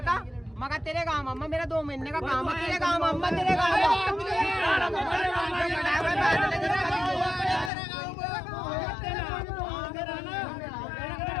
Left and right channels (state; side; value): drops out; right; at 7.7 s